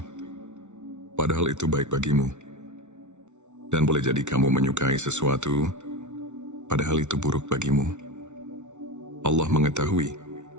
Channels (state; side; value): late; left; 0.83 ms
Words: padahal itu baik bagimu. Dan boleh jadi kamu menyukai sesuatu, padahal itu buruk bagimu. Allah mengetahui,